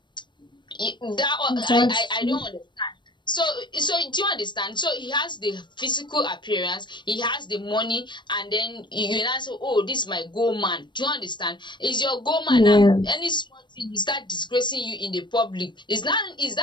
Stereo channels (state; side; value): late; right; 0.22 ms